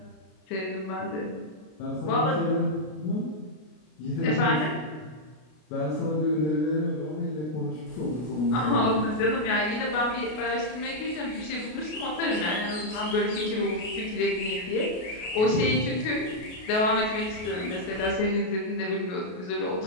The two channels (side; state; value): right; late; 33 ms